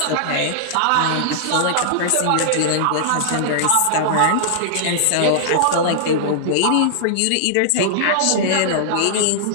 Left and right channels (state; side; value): different; both; correlation -0.01